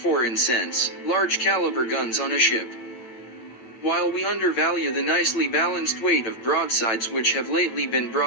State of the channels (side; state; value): right; late; 9.0 ms